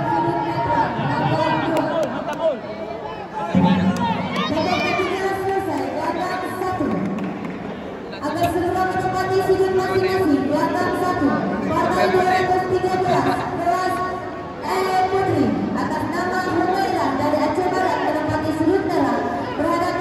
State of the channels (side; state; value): both; identical; correlation 1.00